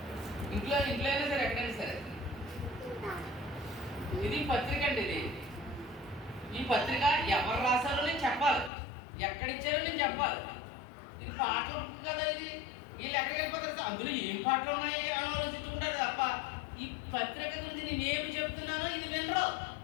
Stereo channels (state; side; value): drops out; right; at 8.7 s